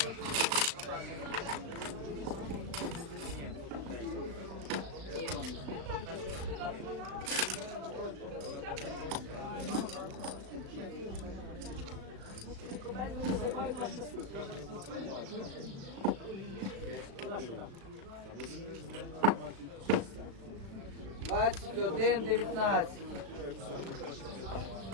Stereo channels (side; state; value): left; late; 36 ms